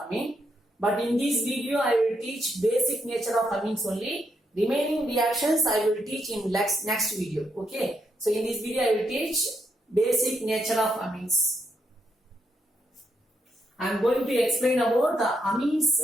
But in this video I will teach basic nature of amines only. Remaining reactions I will teach in next video, okay. So in this video I will teach basic nature of amines. I am going to explain about the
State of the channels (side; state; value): both; normal; correlation 0.79